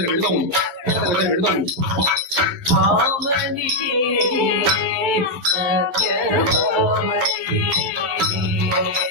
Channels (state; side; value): late; left; 11 ms